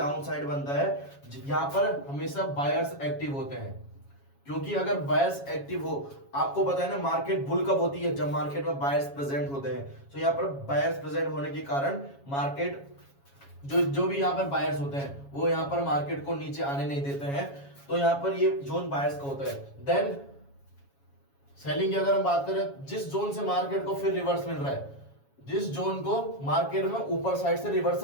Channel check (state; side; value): late; right; 7.2 ms